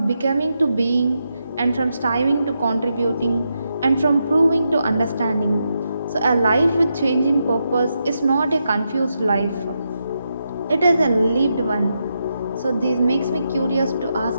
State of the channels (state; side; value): inverted; both; correlation -0.84